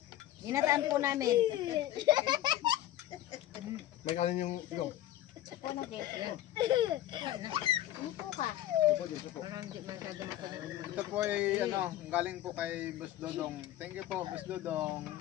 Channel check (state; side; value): quieter; right; 13.3 dB